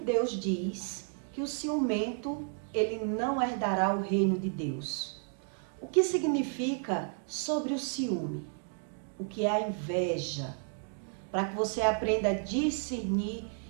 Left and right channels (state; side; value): silent; left; 56 dB below the other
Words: diz que o ciumento ele não herdará o reino de Deus? O que significa sobre o ciúme? O que é a inveja? Para que você aprenda a discernir